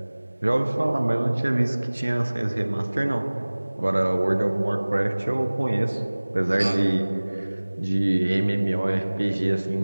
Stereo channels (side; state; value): both; inverted; correlation -1.00